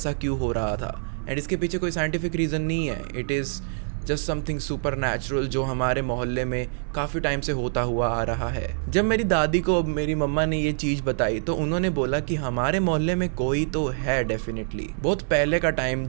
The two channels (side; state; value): left; silent; 56 dB below the other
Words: क्यों हो रहा था। एंड इसके पीछे कोई साइंटिफिक रीज़न नहीं है, it is just something super natural जो हमारे मोहल्ले में काफ़ी टाइम से होता हुआ आ रहा है। जब मेरी दादी को मेरी मम्मा ने ये चीज़ बताई तो उन्होंने बोला कि हमारे मोहल्ले में कोई तो है डेफिनेटली। बहुत पहले का टाइम